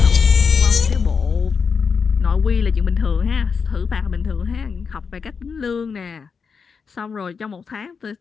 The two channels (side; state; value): right; quieter; 5.7 dB